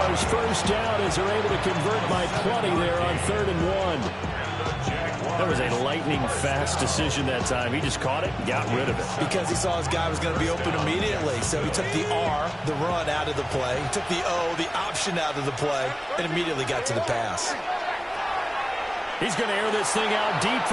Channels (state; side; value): identical; both; correlation 1.00